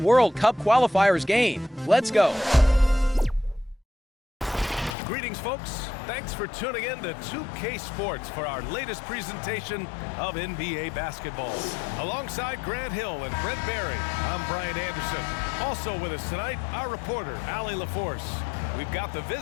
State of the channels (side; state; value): right; drops out; at 5.0 s